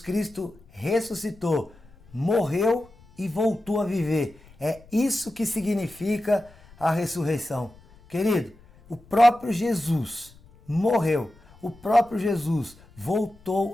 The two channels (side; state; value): left; noise; rumble, 26 dB below the sound